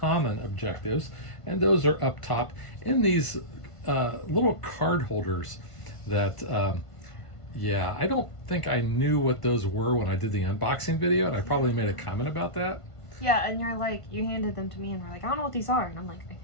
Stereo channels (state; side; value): late; right; 1.5 ms